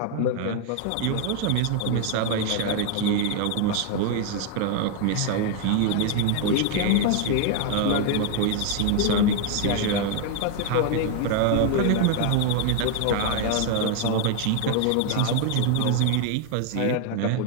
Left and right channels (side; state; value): both; different; correlation 0.01